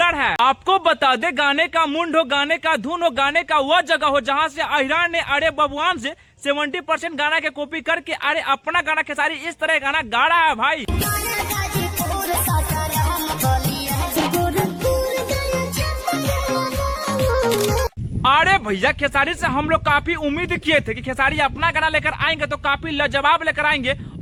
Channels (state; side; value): identical; both; correlation 1.00